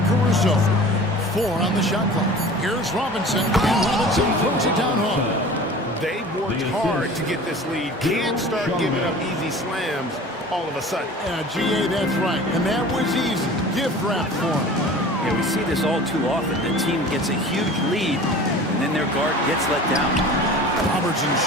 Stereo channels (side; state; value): both; normal; correlation 0.41